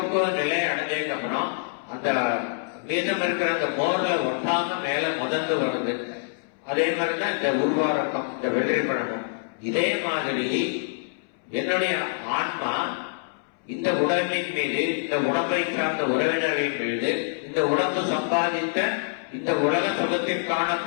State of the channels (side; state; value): right; silent; 61 dB below the other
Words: நிலையை அடைஞ்சதுக்கு அப்புறம் அந்த மீதம் இருக்கிற அந்த மோர்ல ஒட்டாம மேல முதந்து வருது. அதே மாதிரிதான் இந்த உருவாரக்கம், இந்த வெள்ளரி பழமும். இதே மாதிரி என்னுடைய ஆன்மா இந்த உடம்பின் மீது, இந்த உடம்பை சார்ந்த உறவினர்களின் மீது, இந்த உடம்பு சம்பாதித்த இந்த உலக சுகத்திற்கான